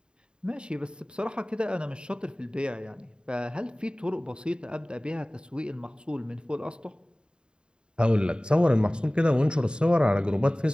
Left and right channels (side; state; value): left; late; 0.050 ms